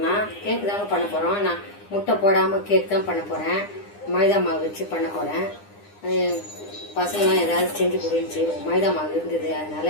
கேக் தாங்க பண்ண போறோம். நான் முட்டை போடாம கேக் தான் பண்ண போறேன். மைதா மாவு வச்சு பண்ண போறேன். பசங்களாம் ஏதாவது செஞ்சு கொடுந்துச்சு, மைதா மாவு இருந்தது,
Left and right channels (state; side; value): late; right; 9.8 ms